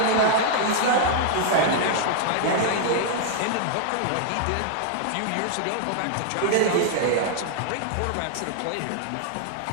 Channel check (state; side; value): different; both; correlation -0.01